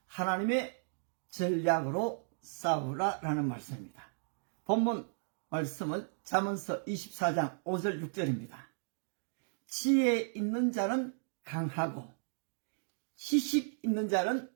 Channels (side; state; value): left; silent; digital silence